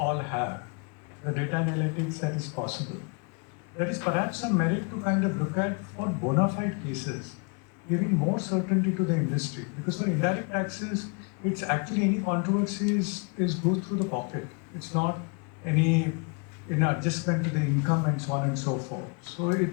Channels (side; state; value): right; quieter; 34.8 dB